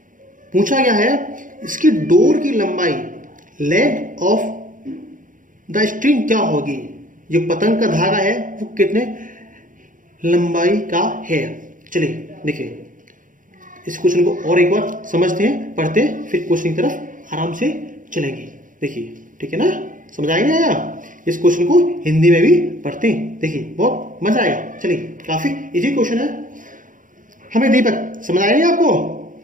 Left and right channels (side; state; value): left; late; 0.38 ms